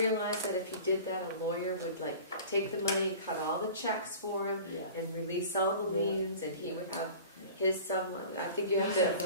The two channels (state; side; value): inverted; both; correlation -0.40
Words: that if he did that, a lawyer would take the money, cut all the checks for him, Yeah, and release all the Yeah. liens, and he would have yeah. his sum, I think you have He said to,